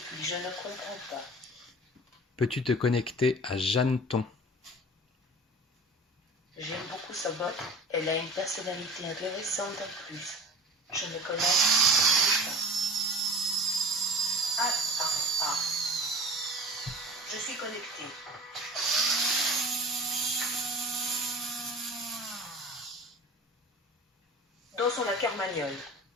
je ne comprends pas. Peux-tu te connecter à Jeanneton? J'aime beaucoup sa botte, elle a une personnalité intéressante en plus. Je ne connais pas. Ah. Je suis connecté. Dansons la carmagnole.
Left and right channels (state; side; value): normal; both; correlation 0.38